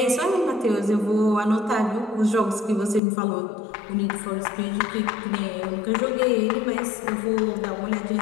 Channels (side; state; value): right; drops out; at 3.0 s